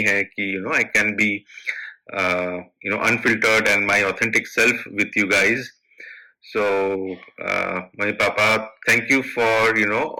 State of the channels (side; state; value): both; identical; correlation 1.00